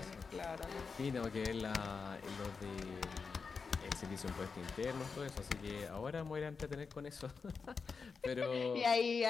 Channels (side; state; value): right; quieter; 5.1 dB